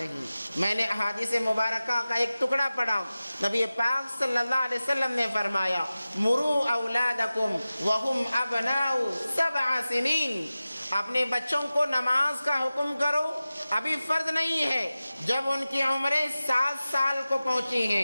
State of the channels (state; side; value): inverted; both; correlation -0.96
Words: میں نے احادیث مبارکہ کا ایک ٹکڑا پڑھا، نبی پاک صلی اللہ علیہ وسلم نے فرمایا مروا اولادکم وہم ابناء 7 سنین، اپنے بچوں کو نماز کا حکم کرو، ابھی فرض نہیں ہے، جب ان کی عمریں 7 سال کو پہنچی